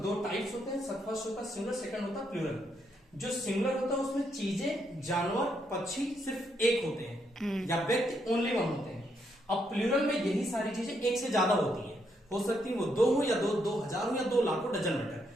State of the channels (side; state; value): both; normal; correlation 0.77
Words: दो टाइप्स होते हैं। फर्स्ट होता है सिंगुलर, सेकंड होता है प्लूरल। जो सिंगुलर होता है उसमें चीजें, जानवर, पक्षी सिर्फ एक होते हैं या व्यक्ति ओनली वन होते हैं। अब प्लूरल में यही सारी चीजें एक से ज्यादा होती हैं। हो सकती है वो दो हो या दो हजार हो या 2 लाख हो, डजन मैटर।